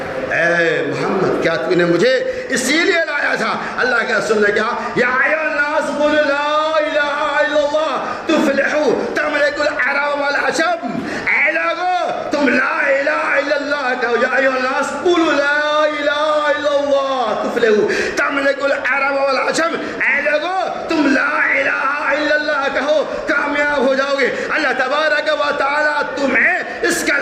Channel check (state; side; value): identical; both; correlation 1.00